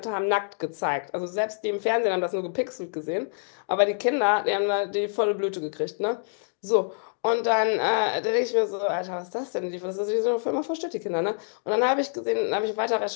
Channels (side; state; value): right; silent; digital silence